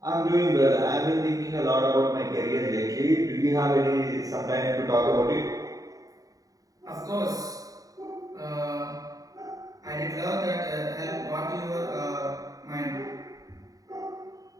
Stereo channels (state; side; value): late; left; 0.17 ms